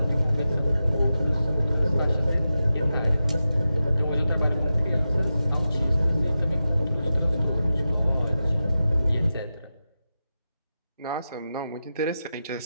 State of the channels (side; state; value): both; inverted; correlation -0.92